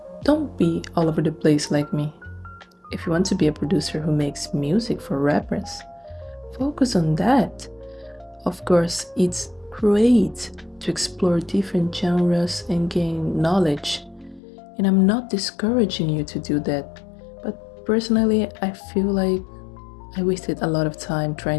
don't be all over the place like me. If you want to be a producer who makes music for rappers, focus on that. Of course, it's great to explore different genres and gain knowledge, and I'm not discouraging you to do that. But personally, I feel like I wasted a lot of time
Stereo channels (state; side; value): drops out; right; at 14.4 s